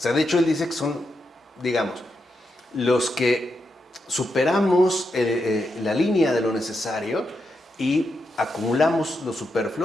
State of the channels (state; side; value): normal; both; correlation 0.85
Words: de hecho él dice que son, digamos, los que superamos la línea de lo necesario y acumulamos lo